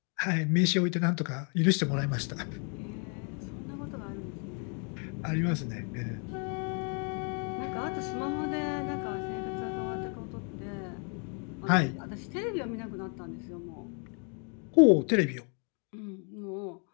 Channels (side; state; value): right; quieter; 39.4 dB